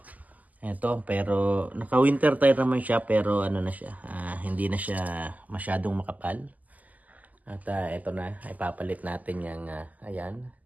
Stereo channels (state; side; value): late; left; 0.078 ms